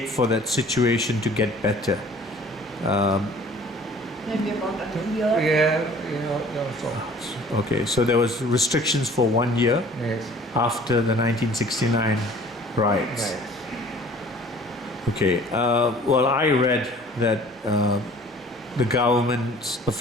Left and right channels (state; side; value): normal; both; correlation 0.50